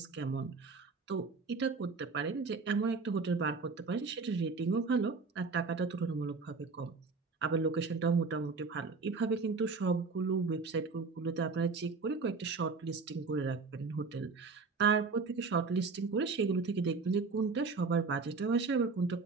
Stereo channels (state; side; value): quieter; left; 4.4 dB